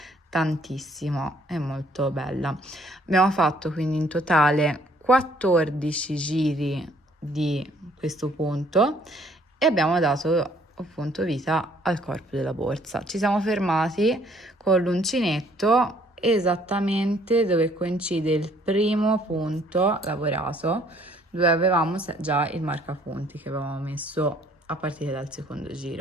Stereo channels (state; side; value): normal; both; correlation 0.62